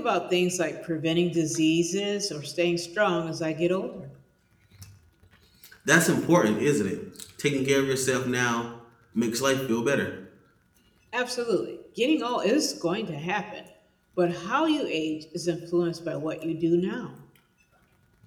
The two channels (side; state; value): both; identical; correlation 1.00